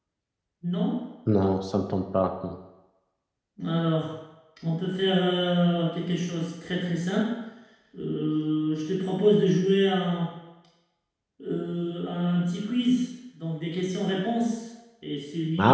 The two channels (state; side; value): identical; both; correlation 1.00